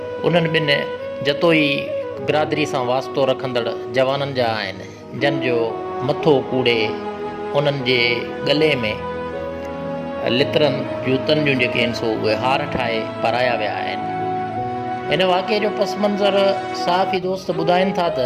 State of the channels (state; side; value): identical; both; correlation 1.00